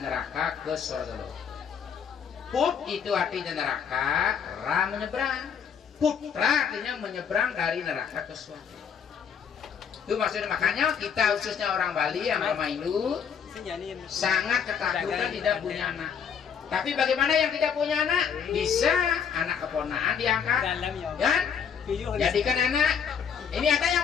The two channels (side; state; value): right; quieter; 7.3 dB